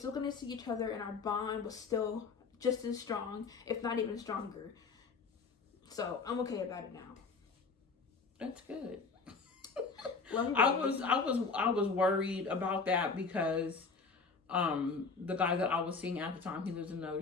going to see each other, and our bond was still just as strong, if not even stronger. So I'm okay about it now. That's good. Love you, I was worried about that, because the guy that I was seeing at the time, he lives in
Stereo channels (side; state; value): right; quieter; 4.7 dB